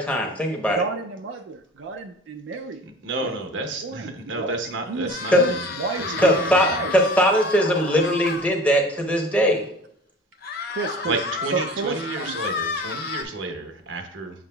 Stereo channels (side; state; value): both; normal; correlation 0.41